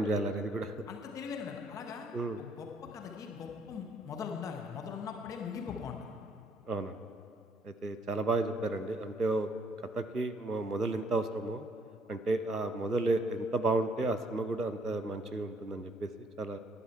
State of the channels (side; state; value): both; normal; correlation 0.66